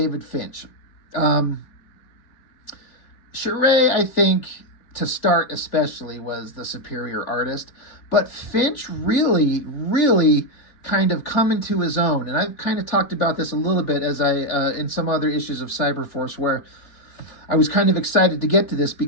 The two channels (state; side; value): late; right; 3.4 ms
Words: Finch. Charest, I think, to start especially, was the superior artist, but Finch really kind of come into his own. And I've kind of talked about this a little bit as in some other issues of Cyberforce, where I was kind of excited to get to this